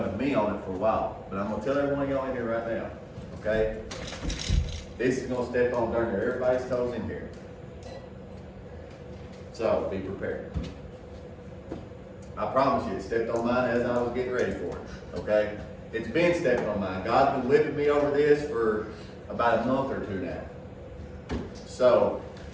with me on it for a while. But I'm going to tell every one of y'all in here right now, okay? This is going to step on darn near everybody's toes in here. So be prepared. I promise you, it stepped on mine as I was getting ready for it, okay? It's been stepping on mine. God's been whipping me over this for about a month or two now. So,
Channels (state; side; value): identical; both; correlation 1.00